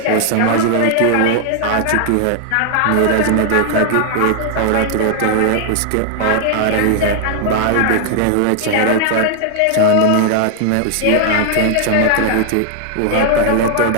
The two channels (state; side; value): different; both; correlation 0.00